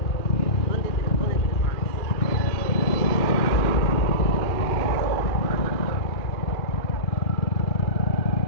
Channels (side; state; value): right; late; 2.4 ms